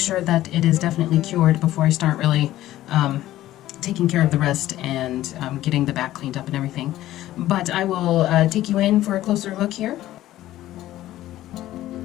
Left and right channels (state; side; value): quieter; right; 14.5 dB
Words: that it is definitely cured before I start really taking care of the rest and getting the back cleaned up and everything. But I will take you in for a closer look here.